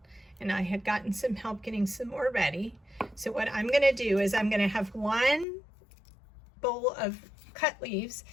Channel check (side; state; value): right; drops out; at 5.5 s